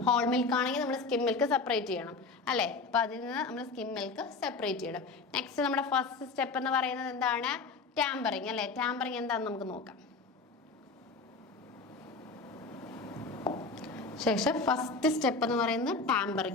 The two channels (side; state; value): right; quieter; 4.1 dB